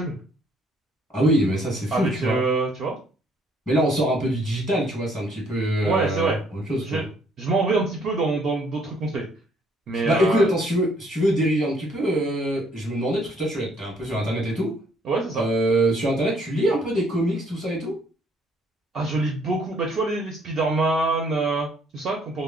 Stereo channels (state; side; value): normal; both; correlation 0.64